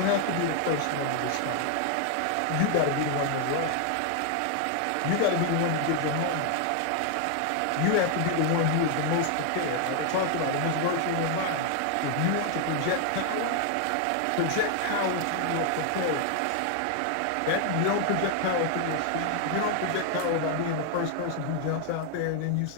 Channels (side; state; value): both; different; correlation 0.00